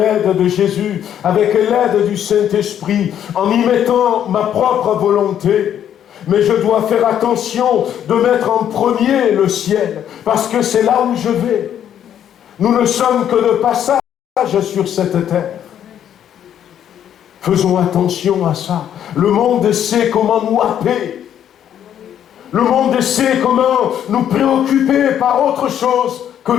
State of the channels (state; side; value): quieter; right; 9.9 dB